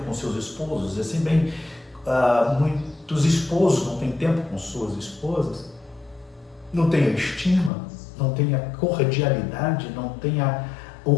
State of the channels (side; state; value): right; drops out; at 7.7 s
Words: com seus esposos. Assim bem, muitos esposos não têm tempo com suas esposas. Não tem a estima, não tem a cordialidade, não tem o